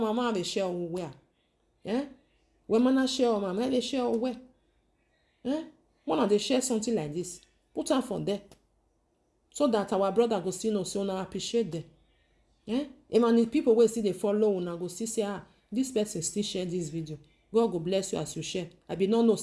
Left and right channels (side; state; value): both; identical; correlation 1.00